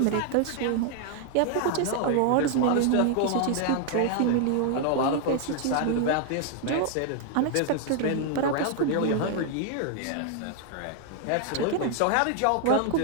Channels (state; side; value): different; both; correlation 0.00